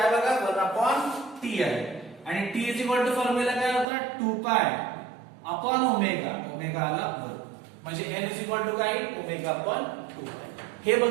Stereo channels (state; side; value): drops out; left; at 3.9 s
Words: बघा 1/t आहे. आणि T is equal to formula काय होता 2 पाय अपॉन ओमेगा. ओमेगा आला वर, म्हणजे एन इज इक्वल टू काय ओमेगा अपॉन 2 पाय. हे